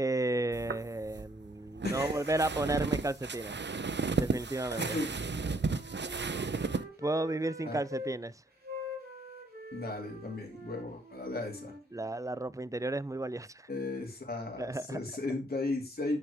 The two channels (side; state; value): both; normal; correlation 0.66